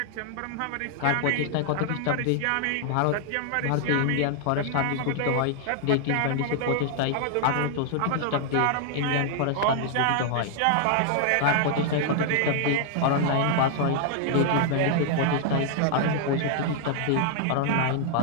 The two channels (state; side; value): different; both; correlation 0.00